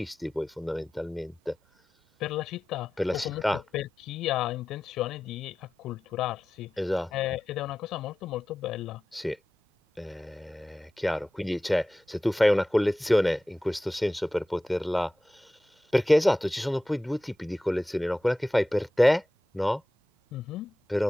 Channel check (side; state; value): both; normal; correlation 0.94